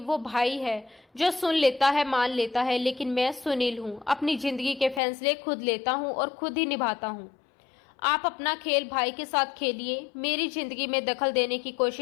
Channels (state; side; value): drops out; right; at 5.0 s